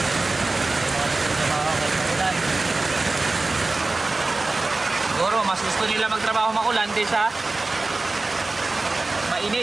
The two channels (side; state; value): left; quieter; 3.3 dB